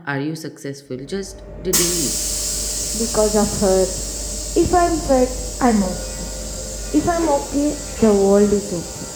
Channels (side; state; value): both; identical; correlation 1.00